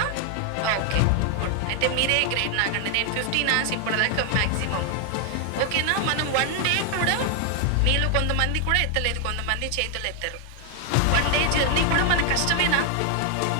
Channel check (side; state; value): both; different; correlation 0.00